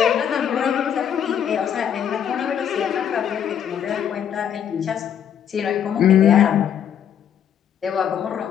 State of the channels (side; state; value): right; quieter; 9.0 dB